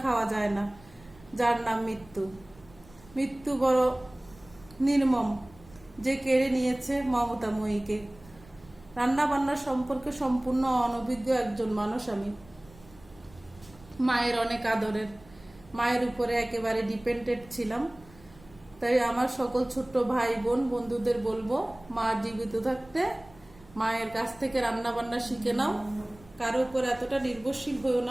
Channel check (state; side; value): noise; right; rumble, 24 dB below the sound